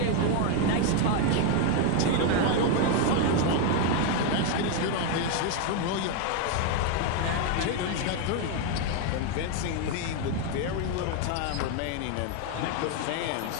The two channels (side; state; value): both; different; correlation 0.01